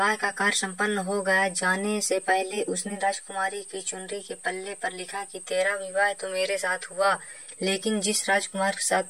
का कार्य संपन्न हो गया, जाने से पहले उसने राजकुमारी की चुनरी के पल्ले पर लिखा कि तेरा विवाह तो मेरे साथ हुआ, लेकिन जिस राजकुमार के साथ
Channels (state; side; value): identical; both; correlation 1.00